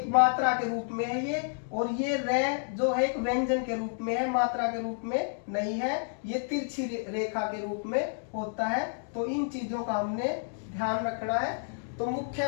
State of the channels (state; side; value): silent; right; digital silence